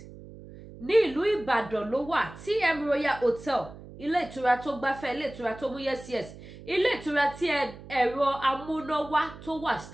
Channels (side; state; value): right; noise; hum, 16 dB below the sound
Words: ní ìlú Ìbàdàn ló wà TM Royal Hotel ilé ìtura tó gbáfẹ́ ilé ìtura tó mú yes ilé ìtura tí ẹ̀rọ amúnáwá tó wà